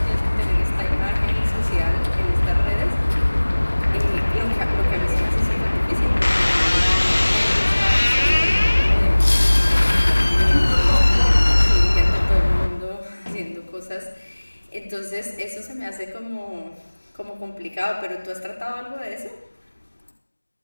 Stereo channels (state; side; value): inverted; both; correlation -1.00